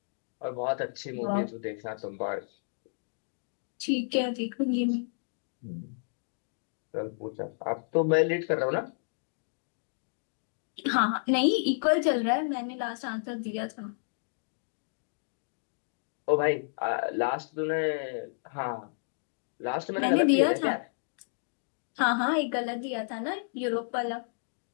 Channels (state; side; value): silent; right; digital silence